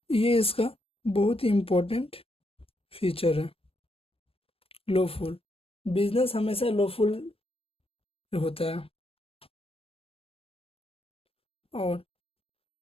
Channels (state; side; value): late; right; 0.28 ms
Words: ये इसका बहुत ही इम्पोर्टेंट फीचर है। लॉफुल बिजनेस हमेशा लॉफुल होता है। और